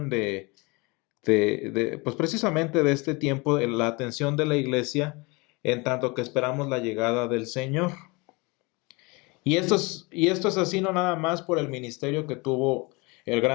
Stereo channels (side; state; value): right; quieter; 26.8 dB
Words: pues precisamente de este tiempo, la atención de la iglesia, en tanto que esperamos la llegada del Señor. Y esto es así no nada más por el ministerio que tuvo el